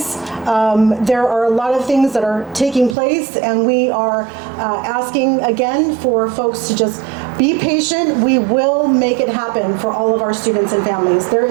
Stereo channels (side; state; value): left; drops out; at 3.0 s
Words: There are a lot of things that are taking place, and we are asking again for folks to just be patient. We will make it happen for all of our students and families. There